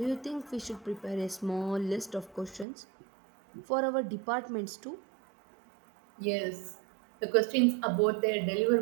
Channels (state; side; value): drops out; left; at 2.7 s